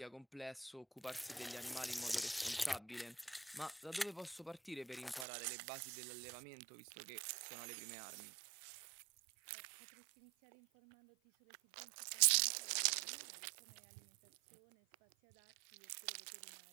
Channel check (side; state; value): left; drops out; at 5.2 s